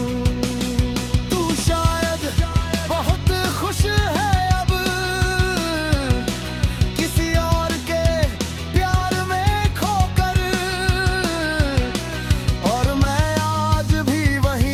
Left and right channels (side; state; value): both; identical; correlation 1.00